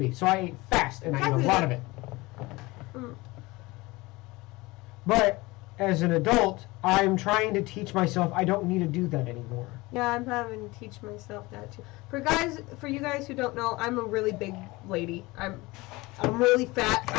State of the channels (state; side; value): quieter; right; 21.9 dB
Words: be, so I ate fast and I ate a lot of it. But as an adult, I'm trying to teach myself I don't need to do that anymore. Yeah, I'm having to teach myself that too. For you guys who don't know, I'm a really big lady. I'm really fat.